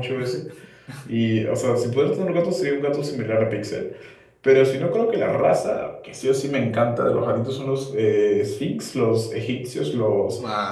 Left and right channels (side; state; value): both; identical; correlation 1.00